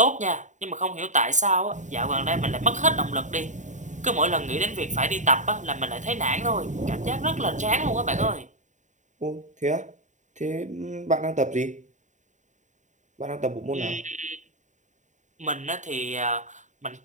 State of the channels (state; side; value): late; left; 0.35 ms